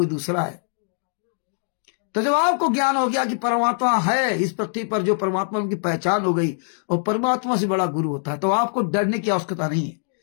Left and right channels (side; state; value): right; silent; digital silence